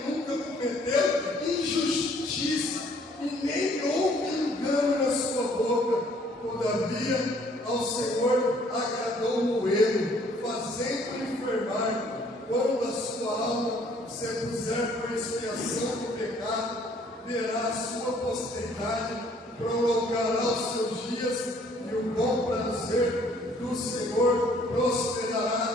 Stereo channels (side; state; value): both; normal; correlation 0.61